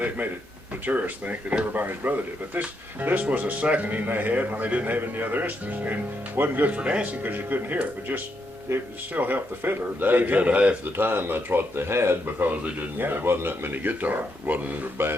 made it, the tourists think that everybody's brother did. But this was a seconding they had when they didn't have any other instruments. And wasn't good for dancing because you couldn't hear it, but just, it still helped the fiddler. Dad said half the time that's what they had because they didn't. Yeah. There wasn't that many guitars. It wasn't a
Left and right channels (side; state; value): both; normal; correlation 0.79